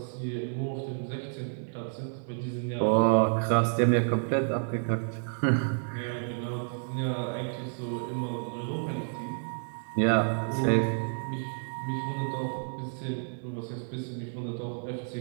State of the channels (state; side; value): silent; left; 58 dB below the other